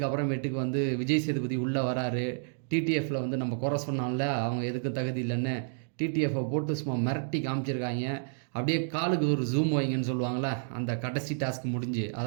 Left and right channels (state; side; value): silent; left; digital silence